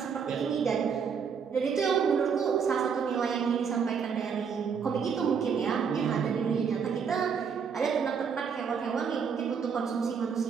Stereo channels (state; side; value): quieter; left; 6.5 dB